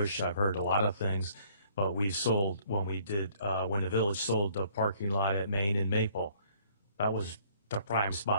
I've heard a lot of things. But we sold when the village sold the parking lot at Main and Maple. That was the prime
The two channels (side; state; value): both; inverted; correlation -0.61